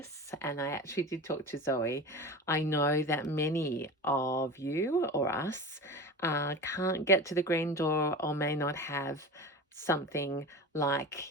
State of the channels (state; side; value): normal; both; correlation 0.30